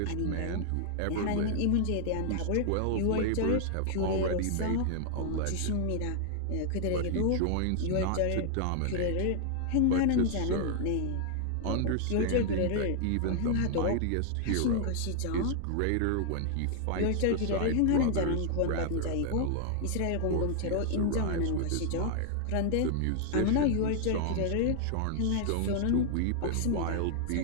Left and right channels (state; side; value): different; both; correlation 0.00